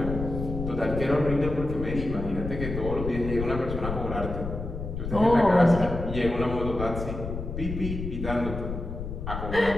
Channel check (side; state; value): left; noise; rumble, 6 dB below the sound